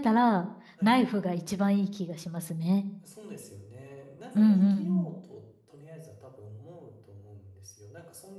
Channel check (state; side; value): identical; both; correlation 1.00